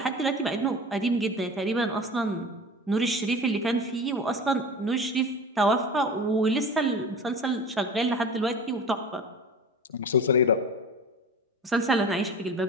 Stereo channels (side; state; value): both; normal; correlation 0.35